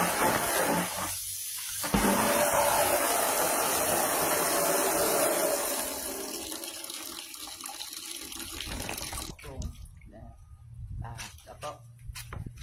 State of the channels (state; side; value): identical; both; correlation 1.00